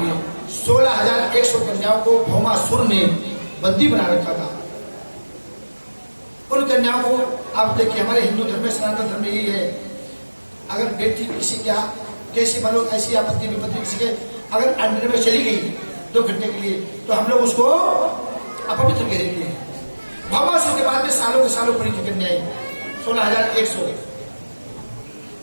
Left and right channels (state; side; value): inverted; both; correlation -1.00